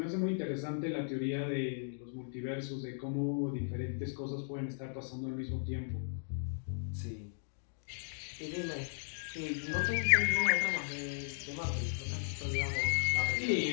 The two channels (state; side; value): silent; right; digital silence